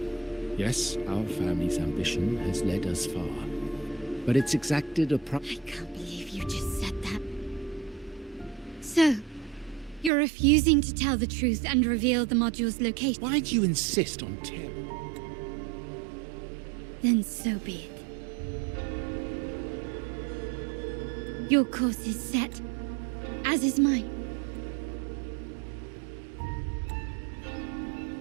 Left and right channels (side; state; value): left; drops out; at 10.1 s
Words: Yes, our family's ambition has led us far, but it's exacted a I can't believe you just said that. So, you're refusing to tell the truth and reveal the module's location? Why do you insist on terror? Then so be it. Your course is set, as is mine.